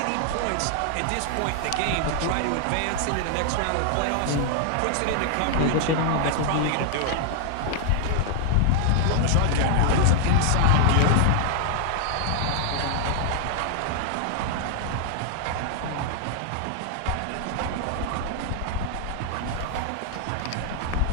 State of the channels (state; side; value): different; both; correlation 0.00